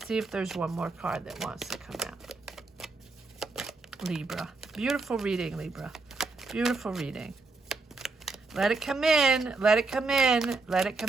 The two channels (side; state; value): left; quieter; 3.8 dB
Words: see if there's one more card that wants to come out. Libra. Beautiful reading, Libra. Beautiful reading. Let it come in. Let it come in. Let it